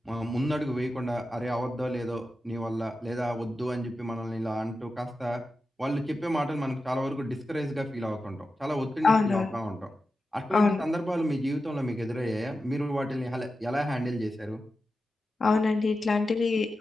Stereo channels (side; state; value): both; normal; correlation 0.92